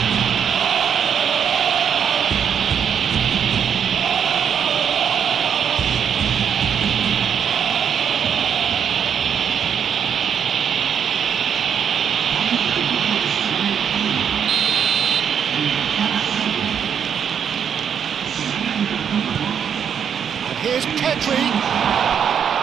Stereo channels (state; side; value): quieter; left; 7.9 dB